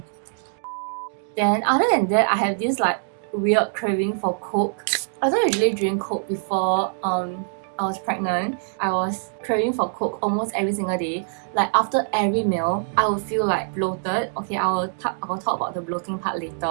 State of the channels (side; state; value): left; silent; digital silence